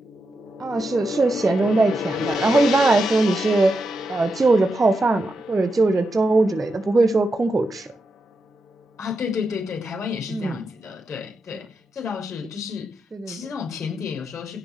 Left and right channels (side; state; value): both; normal; correlation 0.86